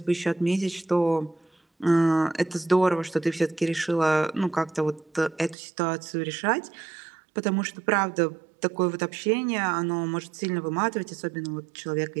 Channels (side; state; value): left; drops out; at 5.6 s